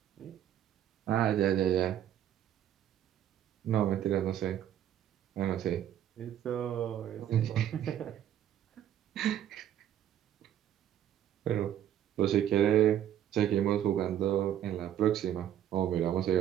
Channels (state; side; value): quieter; left; 10.8 dB